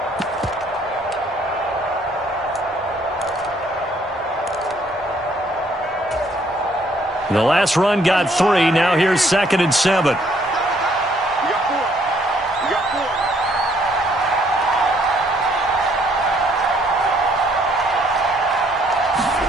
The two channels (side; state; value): both; normal; correlation 0.65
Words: The last run got 3. Now here's 2nd and 7.